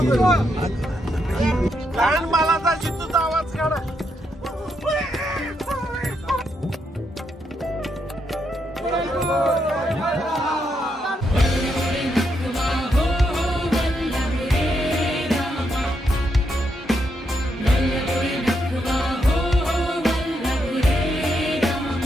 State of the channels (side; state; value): both; normal; correlation 0.79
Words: लहान बाळाचा जितूचा आवाज काढा.